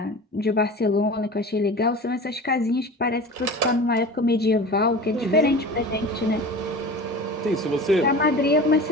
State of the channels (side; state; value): both; normal; correlation 0.35